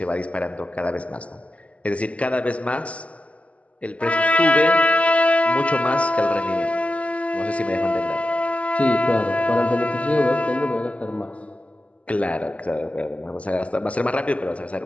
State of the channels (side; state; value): right; late; 0.065 ms